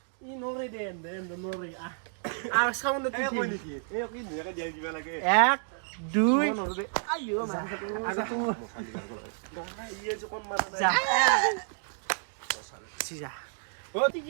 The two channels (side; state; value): left; silent; digital silence